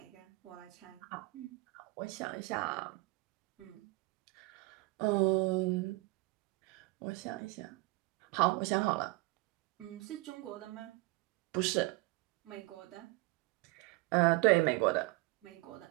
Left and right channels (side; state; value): left; quieter; 23.8 dB